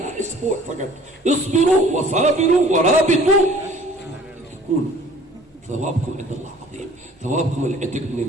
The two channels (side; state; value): both; normal; correlation 0.51